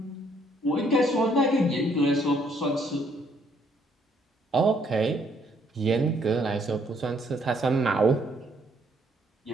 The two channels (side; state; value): both; normal; correlation 0.68